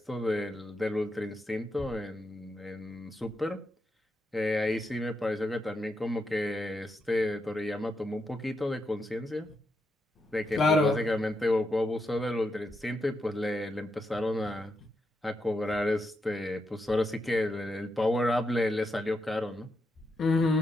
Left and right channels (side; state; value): both; normal; correlation 0.83